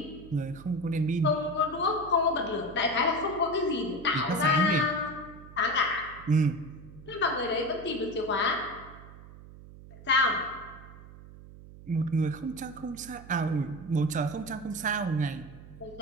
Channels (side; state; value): right; noise; hum, 18 dB below the sound